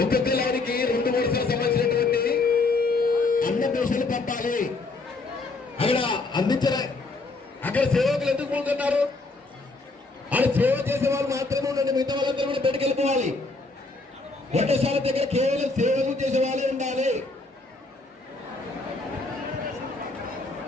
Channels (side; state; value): right; quieter; 3.5 dB